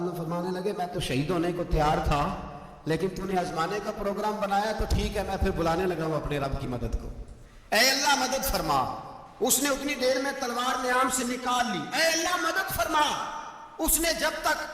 فرمانے لگے میں تو شہید ہونے کو تیار تھا، لیکن تو نے آزمانے کا پروگرام بنایا تو ٹھیک ہے، میں پھر بلانے لگا ہوں اپنے رب کی مدد کو۔ اے اللہ مدد فرما۔ اس نے اتنی دیر میں تلوار نیام سے نکال لی، اے اللہ مدد فرما۔ اس نے جب تک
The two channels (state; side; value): identical; both; correlation 1.00